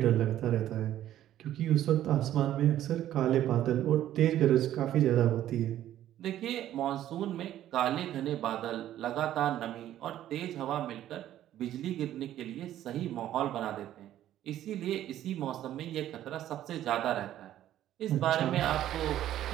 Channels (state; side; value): quieter; left; 12.4 dB